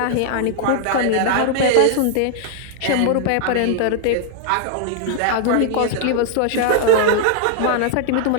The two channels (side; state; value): both; different; correlation 0.00